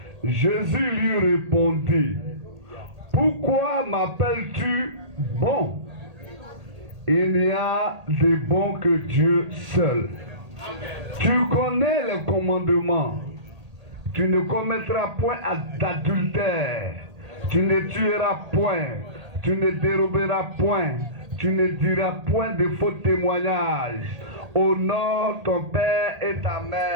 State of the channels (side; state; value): left; late; 1.8 ms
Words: Jésus lui répondit: Pourquoi m'appelles-tu bon? Il n'y a de bon que Dieu seul. Tu connais les commandements. Tu ne commettras point d'adultère. Tu ne tueras point. Tu ne déroberas point. Tu ne diras point de faux témoignages. Honore ton père et ta